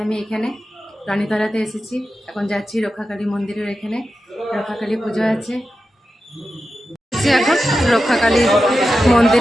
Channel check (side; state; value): both; normal; correlation 0.91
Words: আমি এখানে রানীতলাতে এসেছি। এখন যাচ্ছি রক্ষাকালী মন্দিরের, এখানে রক্ষাকালী পুজো আছে। এখন রক্ষাকালী